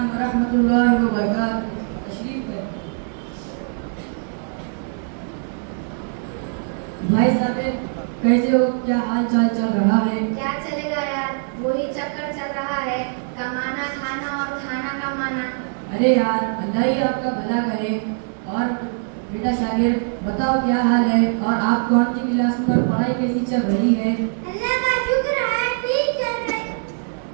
ورحمۃ اللہ وبرکاتہ. تشریف لیں. بھائی صاحب کیسے ہو؟ کیا حال چال چل رہا ہے؟ کیا چلے گا یار, وہی چکر چل رہا ہے, کمانا کھانا اور کھانا کمانا. ارے یار اللہ ہی آپ کا بھلا کرے. اور بیٹا شاگرد بتاؤ کیا حال ہے, اور آپ کون سی کلاس میں اور پڑھائی کیسی چل رہی ہے؟ اللہ کا شکر ہے, ٹھیک چل رہی ہے.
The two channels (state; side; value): silent; left; 64 dB below the other